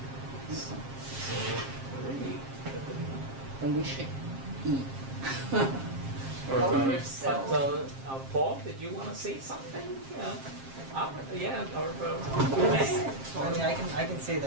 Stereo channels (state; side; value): late; left; 7.5 ms